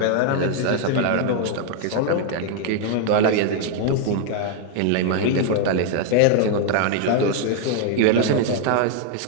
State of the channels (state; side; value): different; both; correlation 0.00